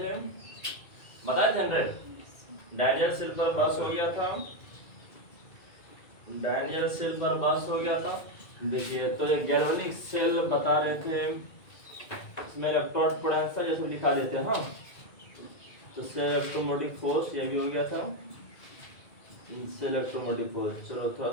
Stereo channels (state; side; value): late; right; 2.2 ms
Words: बताए थे डैनियल सेल पर बस हो गया था, डैनियल सेल पर बस हो गया था। देखिए तो ये गैल्वेनिक सेल बता रहे थे, इसमें इलेक्ट्रोड पोटेंशियल जैसे लिखा देते हैं। हाँ तो से इलेक्ट्रोमोटिव फोर्स ये भी हो गया था, से इलेक्ट्रोमोटिव फोर्स। चलो थोड़ा